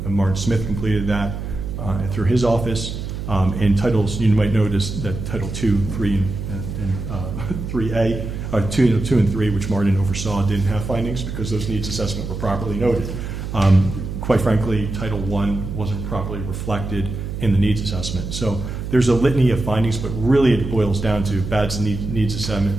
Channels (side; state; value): right; noise; hum, 6 dB below the sound